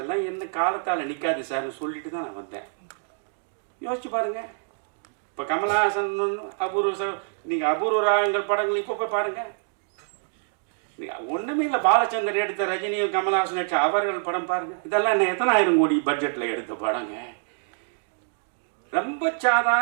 என்ன காலத்தால் நிற்காது சார்னு சொல்லிட்டு தான் நான் வந்தேன். யோசிச்சு பாருங்க. இப்போ கமலஹாசன் அபூர்வ, நீங்கள் அபூர்வ ராகங்கள் படங்கள் இப்போ போய் பாருங்க. ஒன்றுமே இல்லை, பாலச்சந்தர் எடுத்த ரஜினியும் கமலஹாசன் எடுத்த அவர்கள் படம் பாருங்க. இதெல்லாம் என்ன எத்தனை ஆயிரம் கோடி பட்ஜெட்டில் எடுத்த படங்க. ரொம்ப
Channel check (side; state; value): left; silent; digital silence